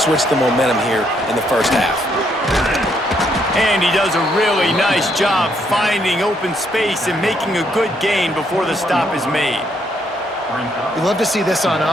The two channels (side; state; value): both; normal; correlation 0.73